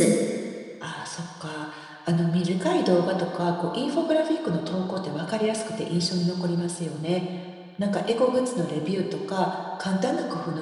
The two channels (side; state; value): both; identical; correlation 1.00